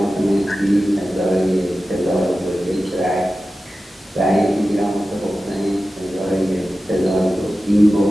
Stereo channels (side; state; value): both; normal; correlation 0.94